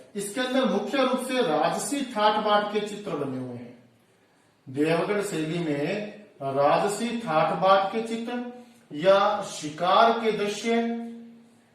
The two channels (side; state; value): both; identical; correlation 1.00